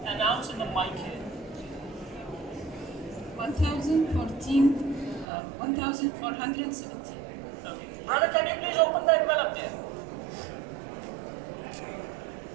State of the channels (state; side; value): drops out; left; at 5.2 s